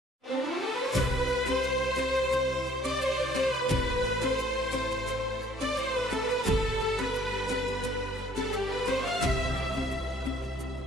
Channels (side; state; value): both; normal; correlation 0.59